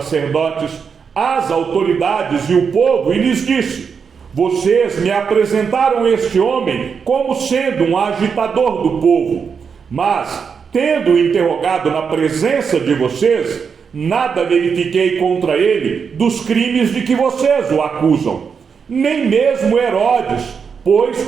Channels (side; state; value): left; quieter; 6.2 dB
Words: as autoridades e o povo e lhes disse: Vocês me apresentaram este homem como sendo um agitador do povo, mas, tendo interrogado na presença de vocês, nada verifiquei contra ele dos crimes de que vocês o acusam. Nem mesmo Herodes,